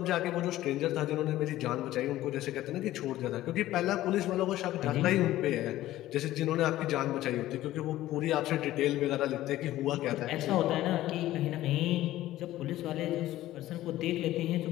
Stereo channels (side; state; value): right; quieter; 15.0 dB